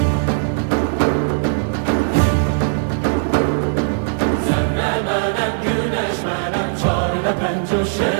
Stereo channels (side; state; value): left; silent; digital silence